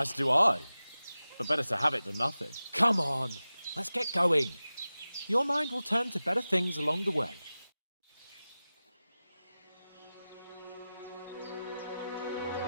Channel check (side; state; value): both; inverted; correlation -0.96